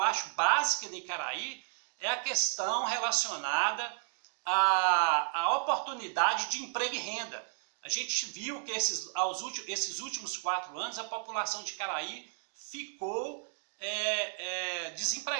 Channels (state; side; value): silent; left; digital silence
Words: acho básica em Caraí é a questão relacionada à oportunidade de emprego e renda. A gente viu que esses últimos 4 anos a população de Caraí ficou